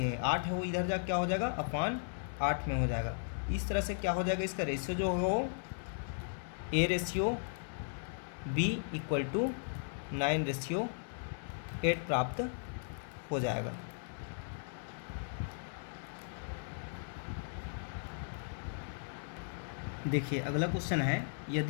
8 है वो इधर जा क्या हो जाएगा अपान 8 में हो जाएगा। इस तरह से क्या हो जाएगा इसका रेशियो जो होगा वो A ratio B equal to 9:8 प्राप्त हो जाएगा। देखिए अगला क्वेश्चन है,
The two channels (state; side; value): silent; right; digital silence